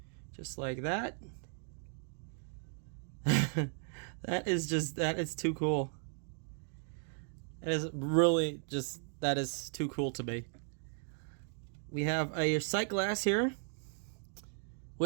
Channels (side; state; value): left; silent; 53 dB below the other